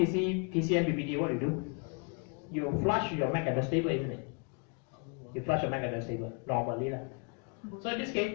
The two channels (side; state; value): right; quieter; 36.3 dB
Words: BBD, what do? You flush your MAC address table, isn't it? You flush your MAC address table normally. So in this case,